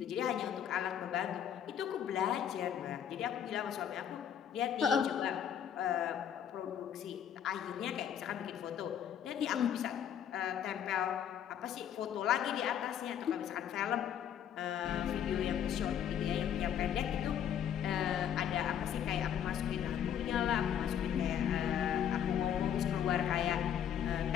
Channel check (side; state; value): right; quieter; 9.2 dB